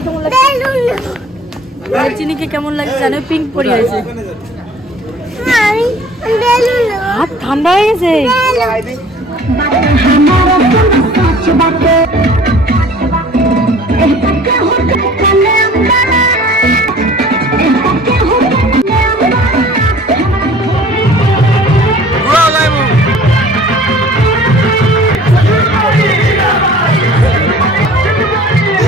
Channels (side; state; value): both; normal; correlation 0.49